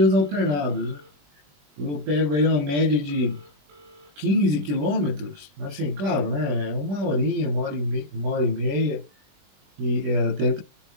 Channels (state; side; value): late; left; 21 ms